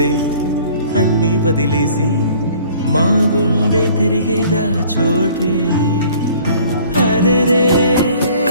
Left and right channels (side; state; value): both; inverted; correlation -0.53